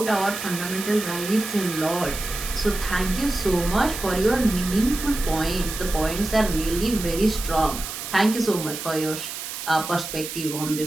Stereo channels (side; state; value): right; noise; hiss, 7 dB below the sound